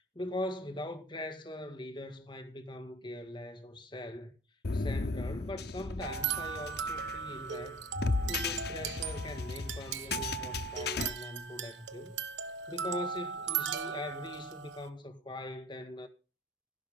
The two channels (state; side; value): normal; both; correlation 0.45